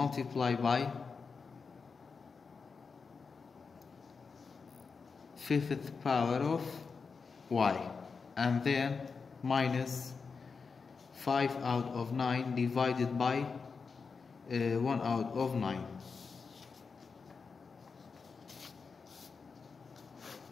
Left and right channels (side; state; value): right; quieter; 5.1 dB